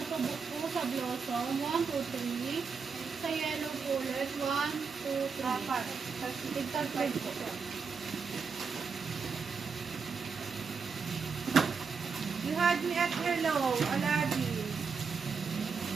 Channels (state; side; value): quieter; left; 5.4 dB